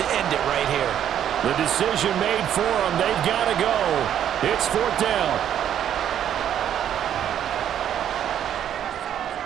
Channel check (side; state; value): left; quieter; 10.0 dB